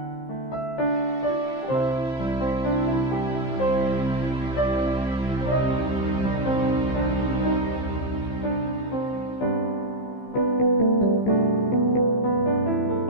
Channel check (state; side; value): late; right; 15 ms